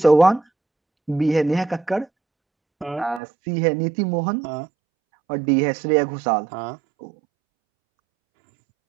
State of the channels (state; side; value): drops out; left; at 3.2 s